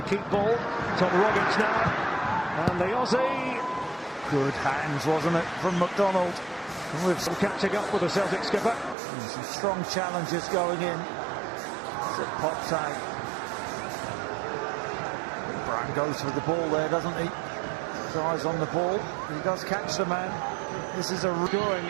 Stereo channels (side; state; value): left; drops out; at 9.0 s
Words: keep ball. Tom Rogic now. And the Aussie. Good hands, wasn't it, from McDonald. With some catching up with the Celtic skipper. And some strong challenges going in. As it pops out. Brown goes for the ball there, doesn't he? Eyes on the ball. He does catch the man. This is a scoring